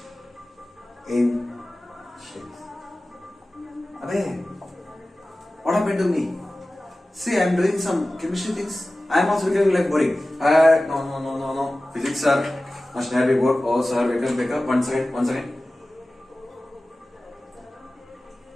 in shapes. Abey, what happened to me? See, I am doing some chemistry things. I am also becoming like boring. No. Physics sir, must never be bored. Oh sir, wake up. One second.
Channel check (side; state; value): both; normal; correlation 0.96